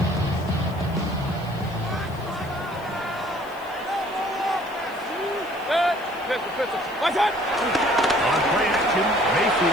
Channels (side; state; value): left; noise; hiss, 24 dB below the sound